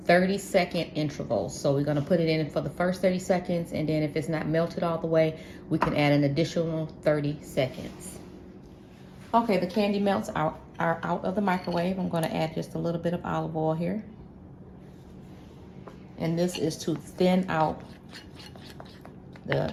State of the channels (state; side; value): identical; both; correlation 1.00